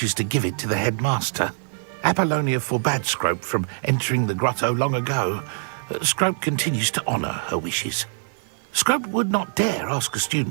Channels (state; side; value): silent; left; digital silence